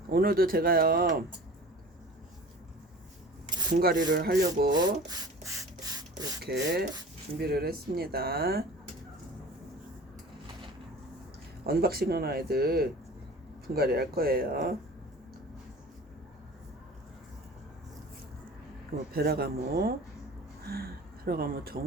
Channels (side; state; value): both; normal; correlation 0.40